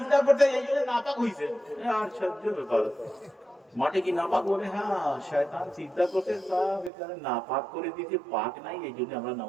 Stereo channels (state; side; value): drops out; left; at 6.9 s